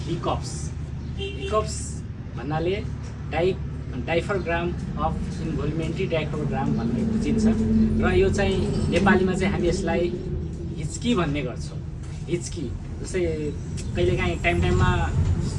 hiccups. Hiccups भन्नाले डाइफरग्राम of इन्भोल्युमेन्ट्री डाइफरग्राम भन्ने बुझिन्छ र यो चाहिँ नेपालीमा चाहिँ हामी यसलाई हिच्की भन्ने गर्छौँ। हिच्की जस्तै कहिलेकाहीँ टाइममा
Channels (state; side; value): identical; both; correlation 1.00